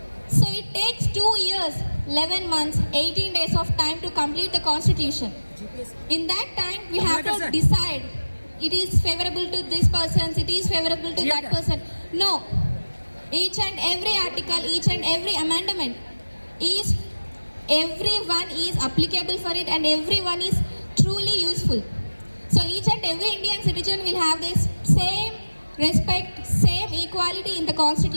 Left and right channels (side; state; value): both; inverted; correlation -1.00